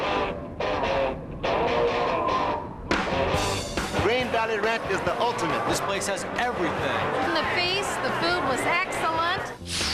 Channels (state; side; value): identical; both; correlation 1.00